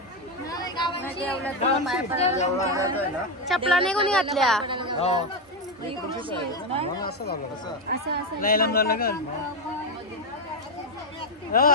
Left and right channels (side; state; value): both; normal; correlation 0.08